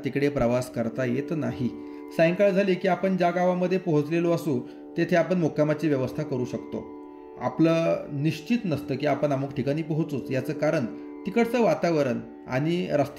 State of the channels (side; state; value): both; identical; correlation 1.00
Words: तिकडे प्रवास करता येत नाही. सायंकाळ झाली की आपण ज्या गावामध्ये पोहोचलेलो असू तेथे आपण मुक्कामाची व्यवस्था करू शकतो. आपलं निश्चित नसतं की आपण अमुक ठिकाणी पोहोचूच. याचं कारण तिकडचं वातावरण आणि